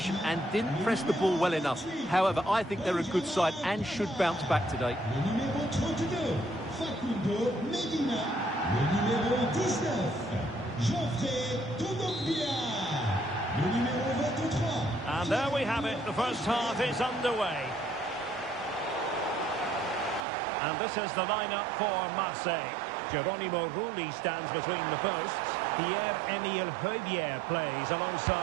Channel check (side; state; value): left; drops out; at 20.2 s